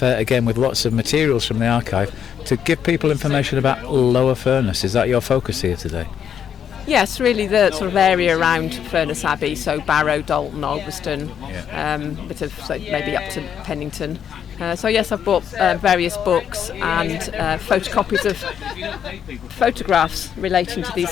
again with lots of materials from the archive to give people information about Lower Furness. Is that your focus here today? Yes, really the sort of area around Furness Abbey, so Barrow, Dalton, Alveston, bit of maybe up to Pennington. So yes, I've bought various books and photocopies of photographs relating to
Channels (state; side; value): quieter; right; 8.5 dB